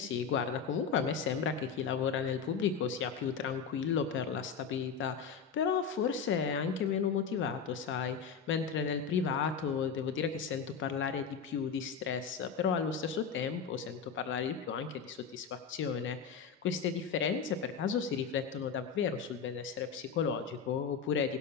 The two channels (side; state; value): right; quieter; 6.3 dB